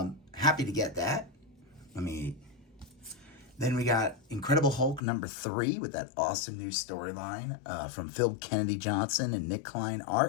Happy to get that. Then we got Incredible Hulk #3 with that awesome new storyline from Phil Kennedy Johnson and Nick Klein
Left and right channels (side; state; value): right; drops out; at 5.0 s